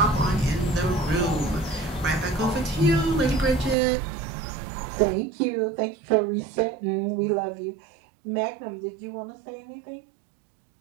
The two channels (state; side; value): drops out; left; at 3.8 s